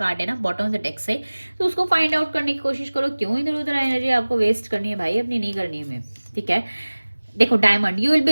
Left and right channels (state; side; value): inverted; both; correlation -1.00